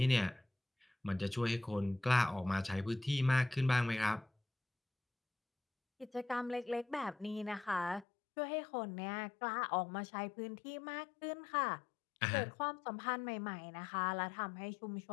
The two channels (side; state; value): right; drops out; at 8.1 s